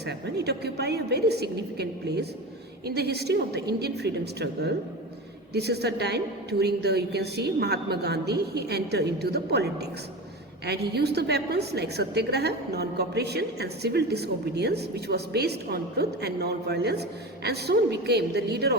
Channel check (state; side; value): normal; both; correlation 0.28